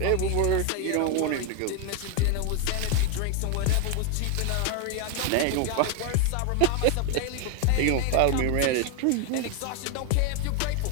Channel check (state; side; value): different; both; correlation 0.01